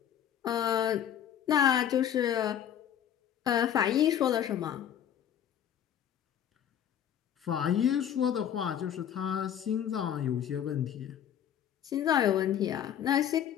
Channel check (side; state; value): right; quieter; 9.7 dB